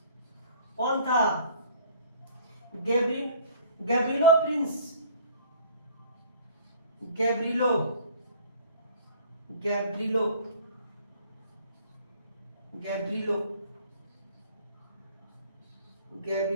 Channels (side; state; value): both; inverted; correlation -0.51